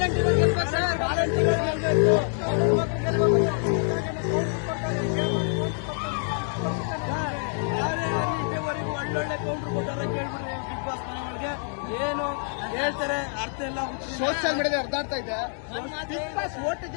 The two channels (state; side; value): silent; right; 59 dB below the other